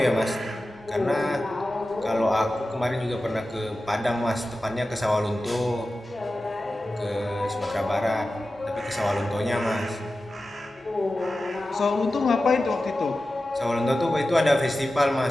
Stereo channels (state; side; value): normal; both; correlation 0.94